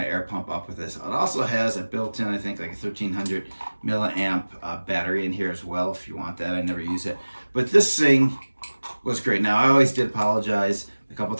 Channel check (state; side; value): inverted; both; correlation -1.00